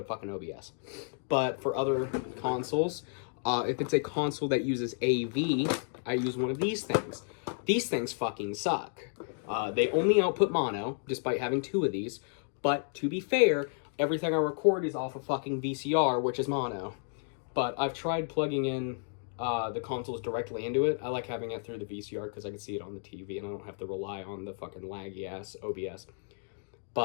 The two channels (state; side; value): silent; right; 57 dB below the other